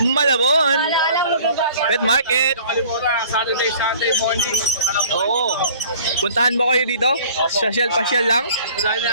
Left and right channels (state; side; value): inverted; both; correlation -0.50